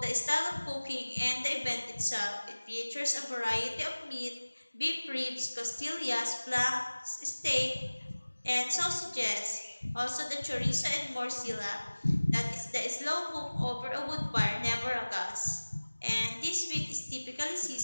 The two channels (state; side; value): inverted; both; correlation -1.00